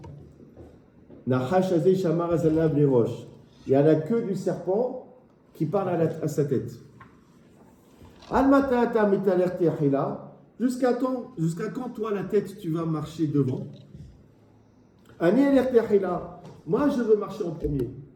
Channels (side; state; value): both; identical; correlation 1.00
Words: Il y a la queue du serpent qui parle à sa tête. Jusqu'à quand toi la tête tu vas marcher devant? Moi je veux marcher en premier.